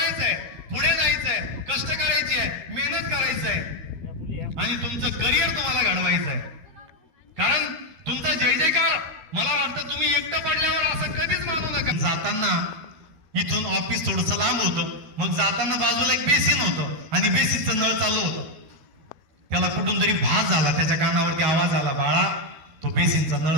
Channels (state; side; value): late; left; 13 ms